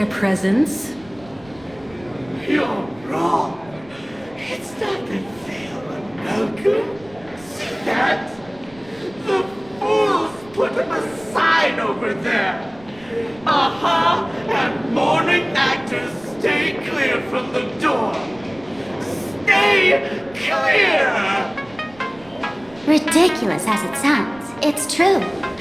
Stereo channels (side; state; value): right; noise; rumble, 24 dB below the sound